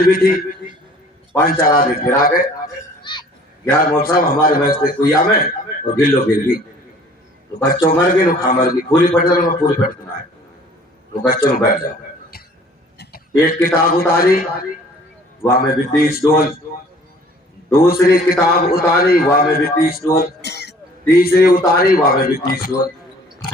بھی تھی. 5-4 آدمی پھر آ گئے. یار مول صاحب ہمارے محض کے کوئی میں اور گلو گر گئی. تو بچوں مر گئی نو کھا مر گئی. پوری پٹ جانا پوری پٹ نہ ہے تو بچوں نے بیٹھ جاؤ. ایک کتاب اتاری وہاں میں بھی 30 ڈول. دوسری کتاب اتاری وہاں میں بھی 30 ڈول. تیسری اتاری وہاں میں بھی 30 ڈول.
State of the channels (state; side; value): normal; both; correlation 0.53